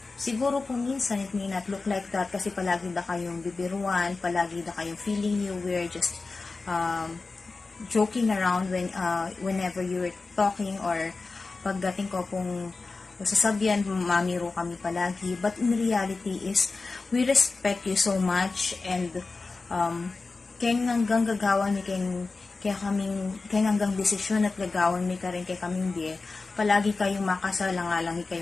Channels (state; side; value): quieter; right; 3.9 dB